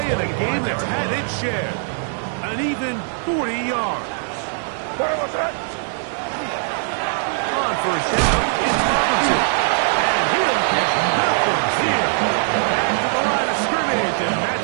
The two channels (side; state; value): left; silent; 65 dB below the other